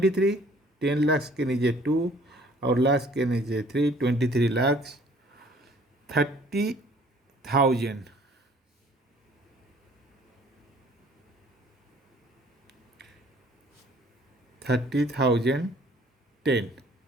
10 लाख के नीचे 2 और लाख के नीचे 3, 23 लाख 30,000, 30,000, 10,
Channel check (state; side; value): normal; both; correlation 0.56